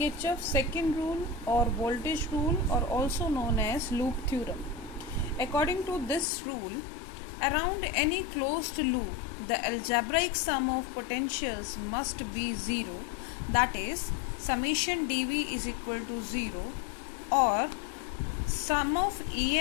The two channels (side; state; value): right; drops out; at 6.3 s